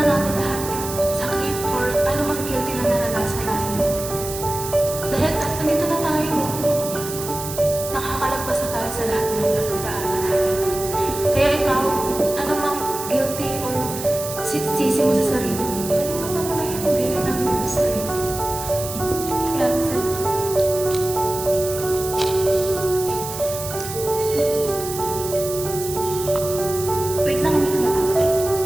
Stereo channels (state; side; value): noise; right; hiss, 9 dB below the sound